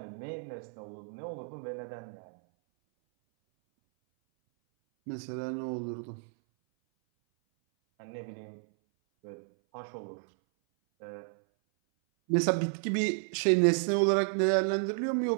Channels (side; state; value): left; silent; 57 dB below the other